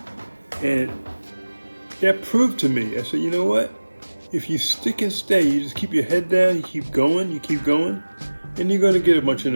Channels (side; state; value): both; inverted; correlation -1.00